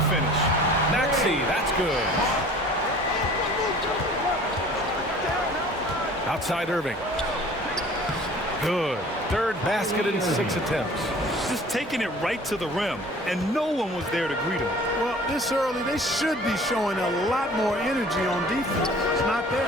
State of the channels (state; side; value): normal; both; correlation 0.48